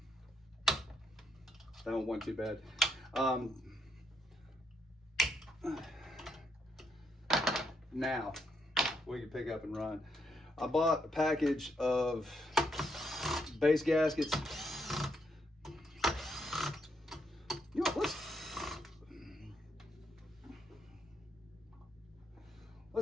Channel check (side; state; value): both; normal; correlation 0.77